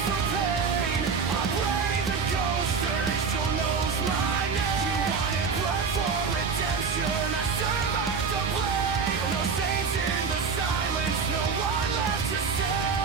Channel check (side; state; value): left; quieter; 5.4 dB